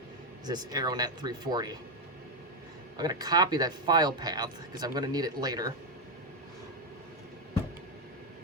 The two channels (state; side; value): normal; both; correlation 0.05